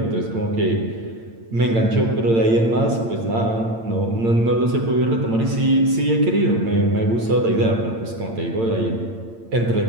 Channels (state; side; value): late; left; 8.8 ms